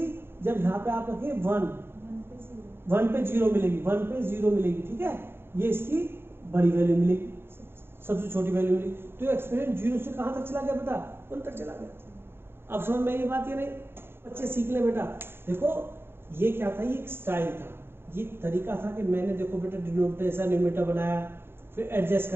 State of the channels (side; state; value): left; late; 0.11 ms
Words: जब यहाँ पे आप रखें 1 पे 0 मिलेगी, 1 पे 0 मिलेगी, ठीक है, ये इसकी बड़ी वैल्यू मिलेगी, सबसे छोटी वैल्यू मिली। तो एक्सप्रेशन 0 से कहाँ तक चला गया बेटा, 1 तक चला गया। अब समझ में ये बात, ये नहीं बच्चे सीख ले बेटा। देखो ये क्या था, ये एक स्टाइल था, ये तरीका था कि मैंने देखो बेटा डिनोमिनेटर न्यूमरेटर बनाया, फिर एडजस्ट